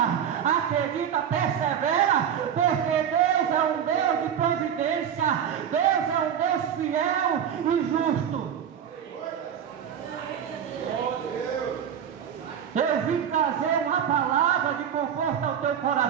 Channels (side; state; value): left; quieter; 8.7 dB